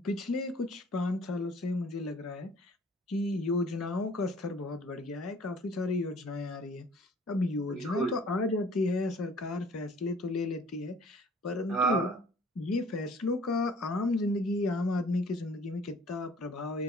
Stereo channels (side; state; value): both; normal; correlation 0.54